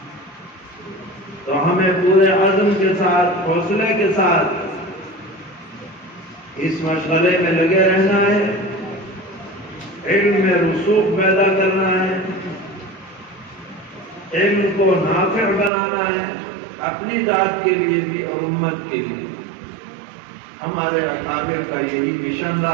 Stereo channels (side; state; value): left; drops out; at 15.7 s